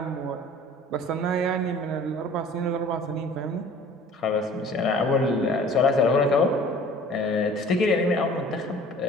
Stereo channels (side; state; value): both; normal; correlation 0.48